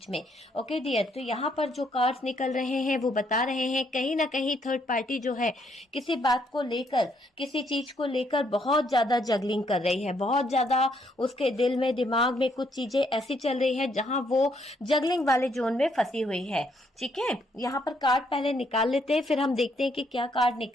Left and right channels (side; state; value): both; normal; correlation 0.72